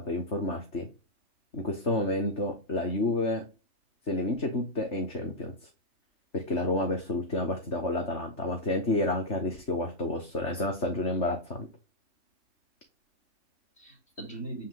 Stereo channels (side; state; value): right; late; 3.3 ms